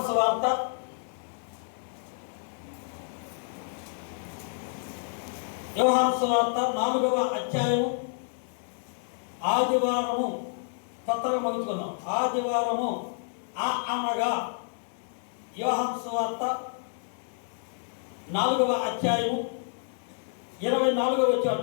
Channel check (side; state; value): right; silent; 59 dB below the other